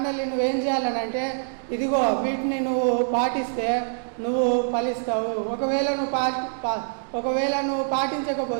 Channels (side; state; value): left; silent; digital silence